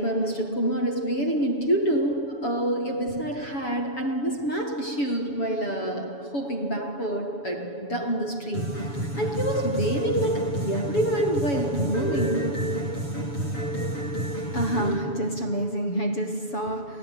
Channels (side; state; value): right; late; 7.1 ms